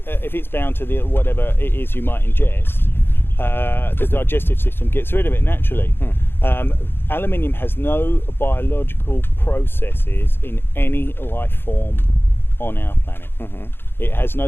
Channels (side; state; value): right; late; 0.10 ms